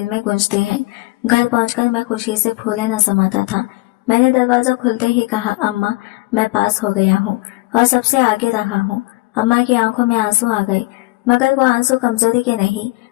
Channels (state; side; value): quieter; right; 22.8 dB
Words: में गूंजती हैं। घर पहुंचकर मैं खुशी से फूले न समाता था। मैंने दरवाजा खुलते ही कहा, अम्मा मैं पास हो गया हूँ और सबसे आगे रहा हूँ। अम्मा की आंखों में आंसू आ गए, मगर वो आंसू कमजोरी के नहीं